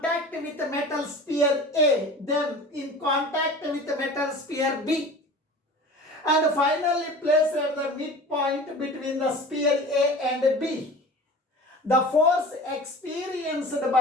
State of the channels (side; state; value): both; normal; correlation 0.39